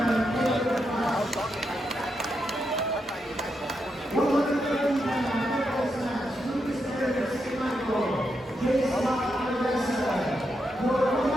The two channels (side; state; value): both; normal; correlation 0.83